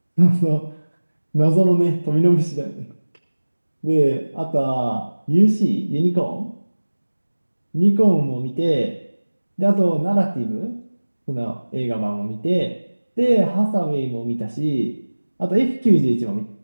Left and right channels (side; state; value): both; inverted; correlation -1.00